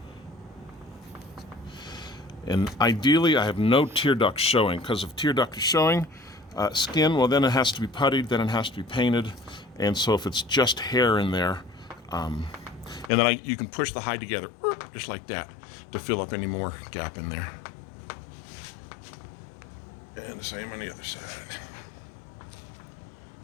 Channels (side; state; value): right; drops out; at 13.1 s